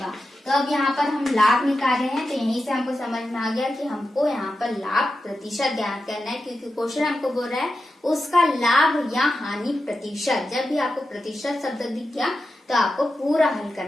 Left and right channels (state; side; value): normal; both; correlation 0.90